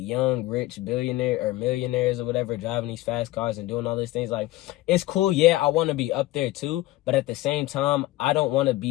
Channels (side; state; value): right; quieter; 17.3 dB